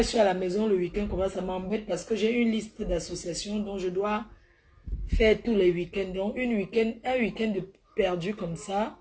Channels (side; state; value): both; identical; correlation 1.00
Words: suis à la maison le week-end, comme ça m'embête parce que j'ai une liste d'associations dont je dois faire tous les week-ends. Donc, un week-end de perdu comme ça,